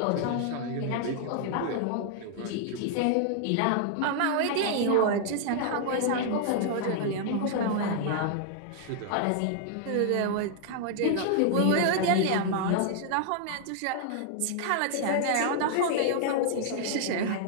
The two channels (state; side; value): different; both; correlation 0.00